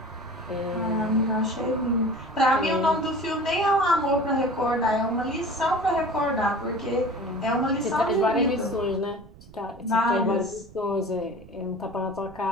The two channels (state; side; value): noise; right; rumble, 21 dB below the sound